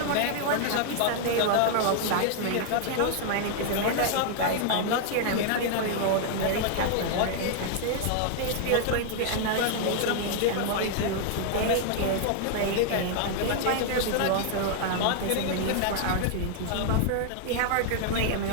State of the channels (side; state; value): both; different; correlation -0.01